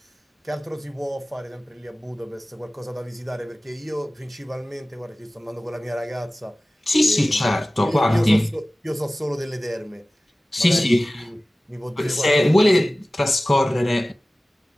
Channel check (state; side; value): normal; both; correlation 0.97